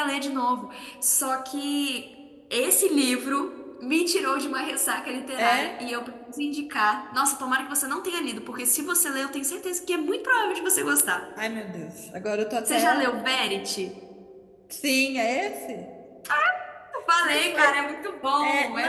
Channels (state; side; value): identical; both; correlation 1.00